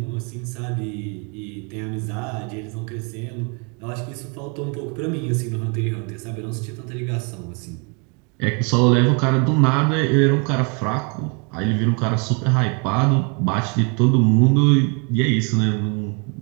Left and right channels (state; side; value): quieter; left; 34.7 dB